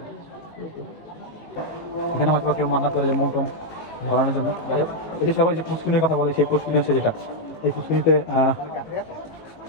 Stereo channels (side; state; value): right; late; 18 ms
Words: এখানে হয়তো কেউ মান্নাত করে যে মন ধরানোর জন্য। যাই হোক, এই যে সবাই যে পুষ্কিনির কথা বলে, সেই পুষ্কিনি হচ্ছে যেটা, এই পুষ্কিনিতে